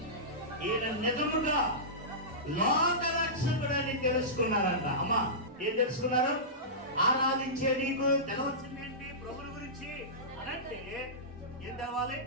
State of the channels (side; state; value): both; normal; correlation -0.18